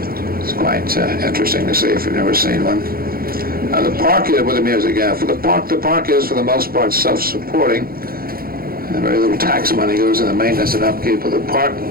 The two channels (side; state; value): left; late; 0.43 ms